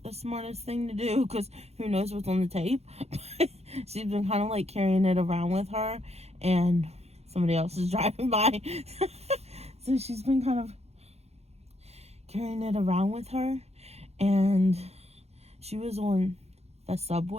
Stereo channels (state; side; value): late; left; 0.31 ms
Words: the smartest thing to do, because who knows what's on the tape. She's been kind of like carrying it around with her, and somebody else is driving by. So she's been kind of carrying it around with her, and she was on the